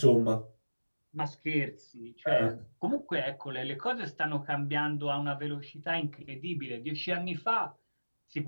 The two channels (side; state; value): both; inverted; correlation -1.00